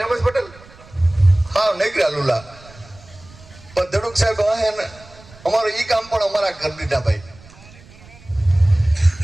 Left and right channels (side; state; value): right; noise; rumble, 23 dB below the sound